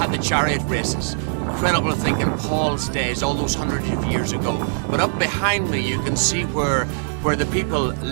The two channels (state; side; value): silent; left; digital silence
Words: the chariot races. Incredible to think in Paul's days, all those hundreds of years ago. But up behind me you can see where the people